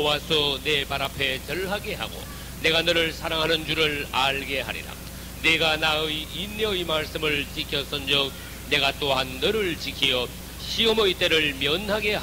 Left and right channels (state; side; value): identical; both; correlation 1.00